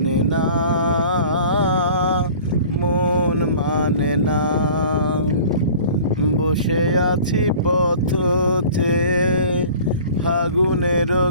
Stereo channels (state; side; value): inverted; both; correlation -0.44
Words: না, মন মানে না। বসে আছি পথ চেয়ে ফাগুনের